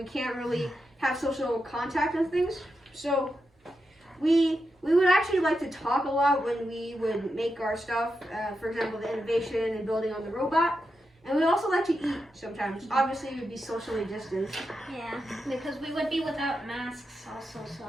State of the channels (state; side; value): normal; both; correlation 0.87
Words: can't really have social contact and things, so we would actually like to talk a lot when we would make our stuff. For example, the innovation and building on the robot. And we also like to eat sometimes. Obviously, we would be socially distanced. Yeah, because we would be without masks also,